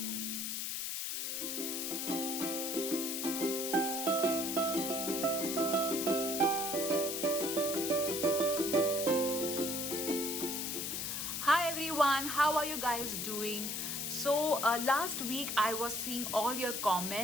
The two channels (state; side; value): noise; left; hiss, 2 dB below the sound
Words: everyone, how are you guys doing? Last week I was seeing all your